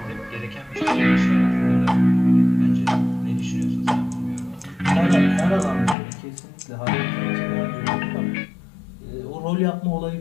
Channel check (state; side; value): drops out; right; at 6.0 s